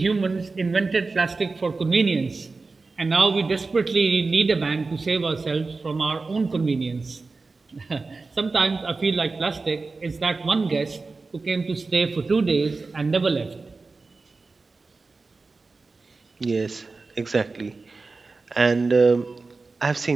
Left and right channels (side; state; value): left; quieter; 3.9 dB